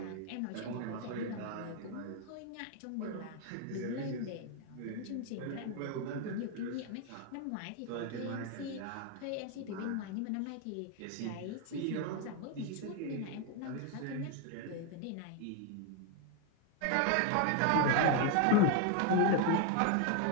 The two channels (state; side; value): different; both; correlation 0.01